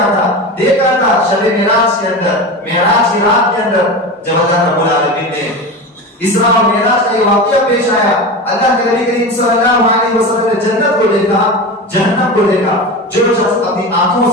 تھا، دیکھا تھا شب معراج کے اندر، معراج کی رات کے اندر جب اللہ رب العالمین نے اسراء اور معراج کا یہ واقعہ پیش آیا، اللہ کے نبی کریم صلی اللہ علیہ وسلم نے جنت کو دیکھا، جہنم کو دیکھا۔ جو شخص اپنی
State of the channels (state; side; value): normal; both; correlation 0.26